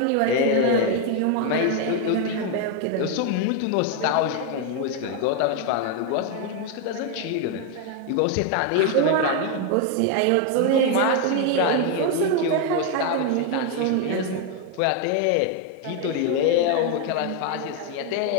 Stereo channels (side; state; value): both; different; correlation 0.01